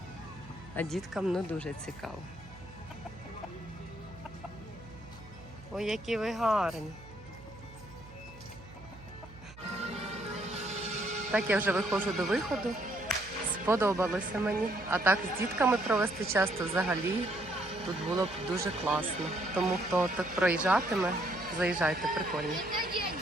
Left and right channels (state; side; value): noise; right; hum, 19 dB below the sound